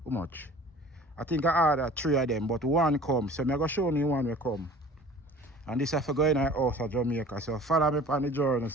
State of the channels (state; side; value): normal; both; correlation 0.45